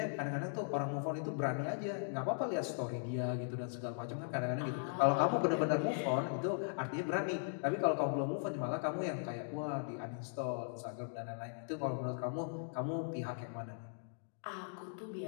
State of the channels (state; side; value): silent; right; digital silence